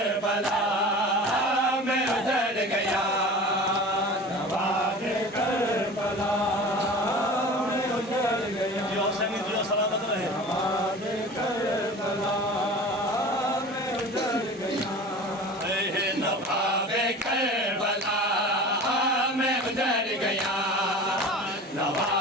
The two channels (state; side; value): normal; both; correlation 0.37